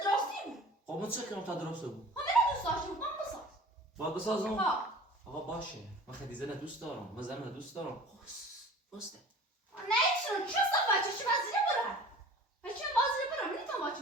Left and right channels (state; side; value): normal; both; correlation 0.43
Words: درستی بود؟ خب من چه کنم تا درست بود؟ من دوست داشتم من بساز. باید بسازم؟ ها. آقا باشه. من خیلی زن دوست دارم. من زن دوست دارم. بسته. نه چه صفحه چی وزیره برای؟ هیچ وزیره برای من تا